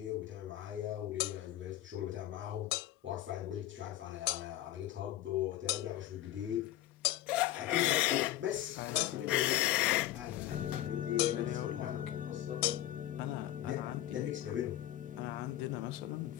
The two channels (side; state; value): right; quieter; 13.6 dB